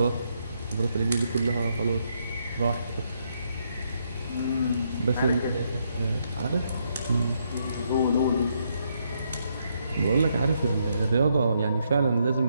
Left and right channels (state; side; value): inverted; both; correlation -0.77